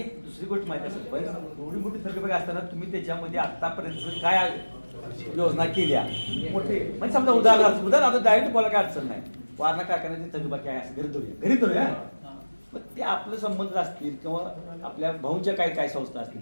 दुसरी गोष्ट माहिती असेल पण एवढी मोठी थकबाकी असताना तुम्ही त्याच्यामध्ये आतापर्यंत काय योजना केल्या मोठे म्हणजे समजा उदाहरण आता डायरेक्ट बोला काय अडचण नाही. वारणा कारखान्याची थकबाकी आहे असं घरी धरूया. पण ते आपले संबंध असतील किंवा आपल्या भाऊंच्या काय संस्था असतील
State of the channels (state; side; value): inverted; both; correlation -1.00